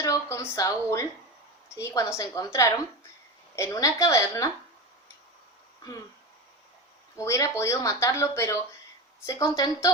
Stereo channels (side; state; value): both; normal; correlation 0.24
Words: con Saúl, ¿sí? Cuando se encontraron en una caverna, hubiera podido matarlo, pero se